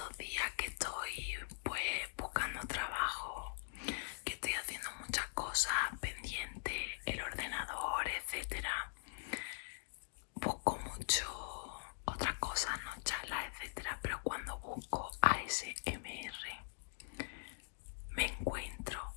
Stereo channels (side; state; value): right; silent; digital silence